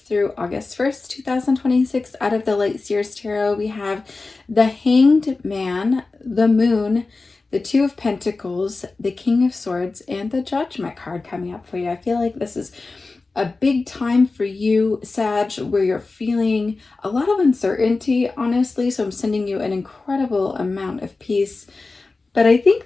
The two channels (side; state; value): right; quieter; 3.7 dB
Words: through August 1st, 2026. Out of the Light Seers Tarot, we have the Hanged Man, the Moon, the Two of Pentacles, the King of Swords, and the Judgment card coming up for you. I feel like this is a big time for you, Sag, where you're feeling a lot of uncertainty, honestly. So I'm sending you an incredible amount of peace. But I